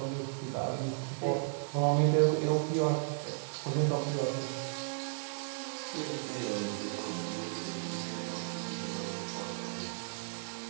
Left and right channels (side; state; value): left; silent; digital silence